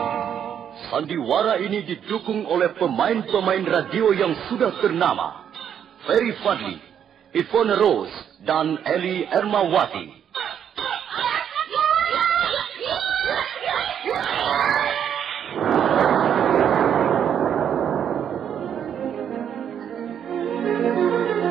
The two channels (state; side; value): quieter; left; 8.8 dB